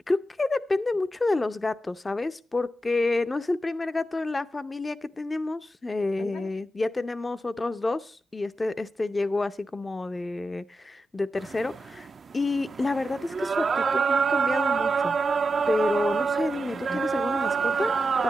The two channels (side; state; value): both; normal; correlation 0.89